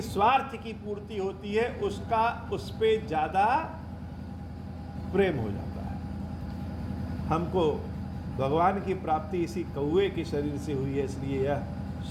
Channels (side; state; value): both; identical; correlation 1.00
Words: स्वार्थ की पूर्ति होती है उसका उस पे ज्यादा प्रेम हो जाता है। हमको भगवान की प्राप्ति इसी कौए के शरीर से हुई है, इसलिए यह